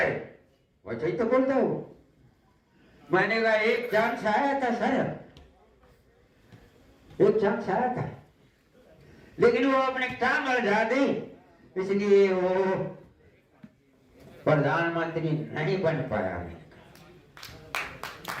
वैसे ही तो बोलता हूं। मैंने कहा एक चांस आया था सर, एक चांस आया था, लेकिन वो अपने काम लगा दी, इसलिए वो प्रधानमंत्री नहीं बन पाया।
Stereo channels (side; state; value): both; identical; correlation 1.00